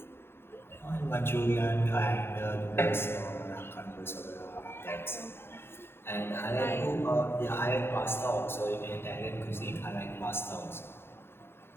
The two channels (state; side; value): late; right; 0.11 ms